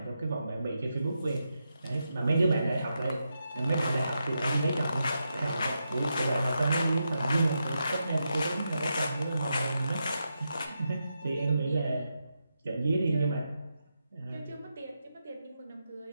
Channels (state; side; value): inverted; both; correlation -0.85